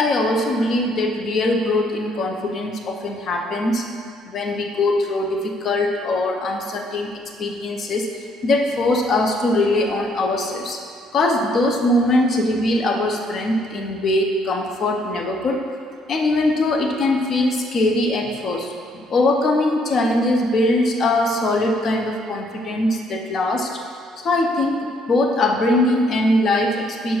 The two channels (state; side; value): normal; both; correlation 0.68